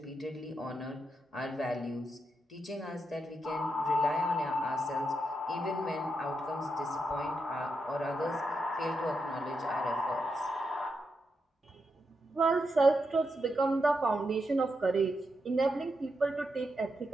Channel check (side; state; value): both; normal; correlation 0.84